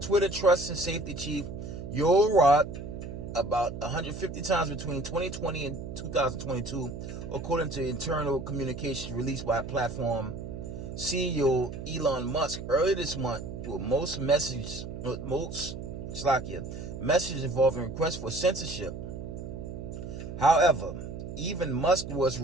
Twitter Trust and Safety Chief Yoel Roth about 150 times between 2020 and 2022, according to internal communications released by platform CEO Elon Musk earlier this month, with most messages involving requests for censorship. However, even Musk was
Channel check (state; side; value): noise; right; hum, 8 dB below the sound